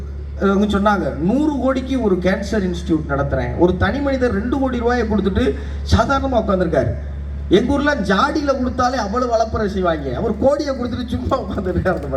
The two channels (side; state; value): both; identical; correlation 1.00